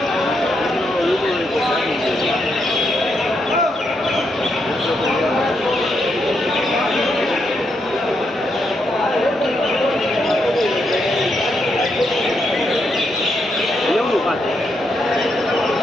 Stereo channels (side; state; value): both; normal; correlation 0.80